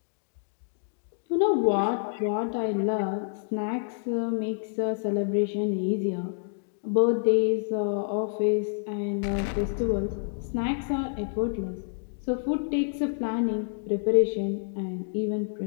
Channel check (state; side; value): silent; right; digital silence